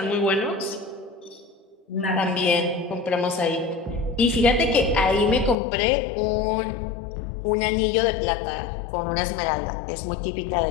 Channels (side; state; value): right; drops out; at 5.6 s